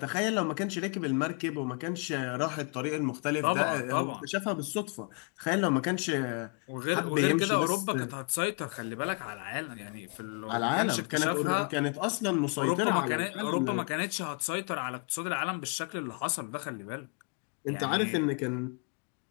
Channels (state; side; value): quieter; right; 37.5 dB